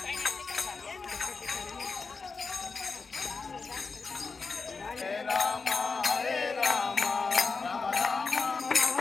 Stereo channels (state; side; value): quieter; right; 4.5 dB